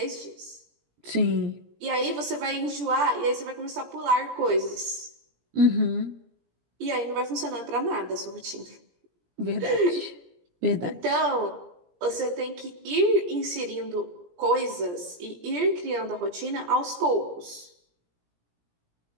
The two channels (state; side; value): late; left; 17 ms